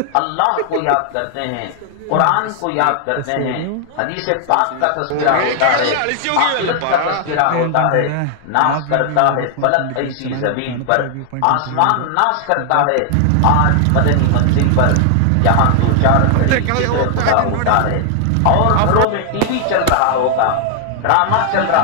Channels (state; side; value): different; both; correlation 0.00